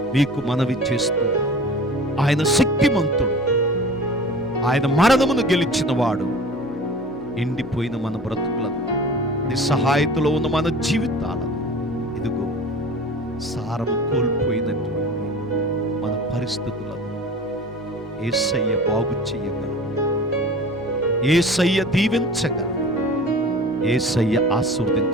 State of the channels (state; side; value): normal; both; correlation 0.40